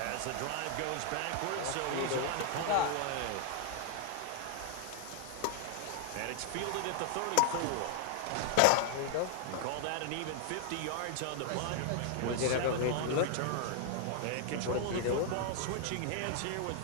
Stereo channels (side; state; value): both; different; correlation 0.00